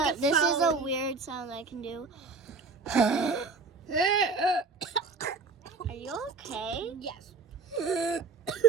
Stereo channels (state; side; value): quieter; left; 4.4 dB